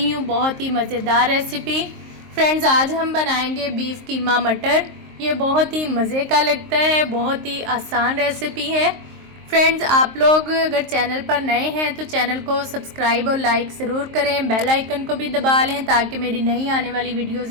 हूँ बहुत ही मज़ेदार रेसिपी। फ्रेंड्स, आज हम बनाएंगे बीफ कीमा मटर। ये बहुत ही मज़े का लगता है, बहुत ही आसान रेसिपी है। फ्रेंड्स, आप लोग अगर चैनल पर नए हैं तो चैनल को सब्सक्राइब और लाइक ज़रूर करें, बेल आइकन को भी दबा लें ताकि मेरी नई आने वाली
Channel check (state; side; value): late; left; 23 ms